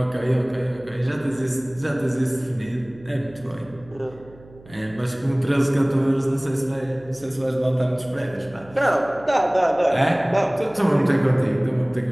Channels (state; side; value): noise; right; hum, 23 dB below the sound